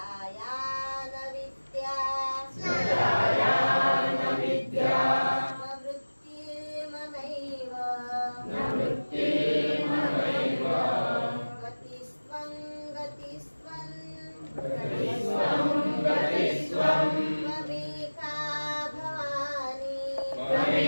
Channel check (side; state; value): both; inverted; correlation -1.00